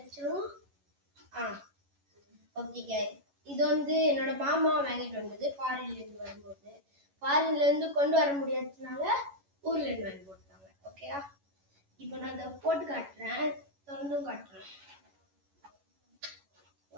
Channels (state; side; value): late; left; 11 ms